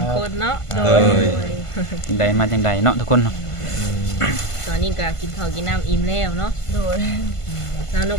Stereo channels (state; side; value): late; right; 1.5 ms